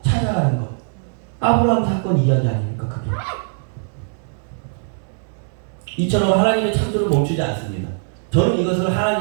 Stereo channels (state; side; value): silent; left; 65 dB below the other